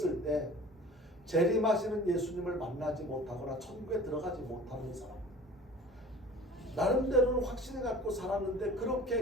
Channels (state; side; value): normal; both; correlation 0.43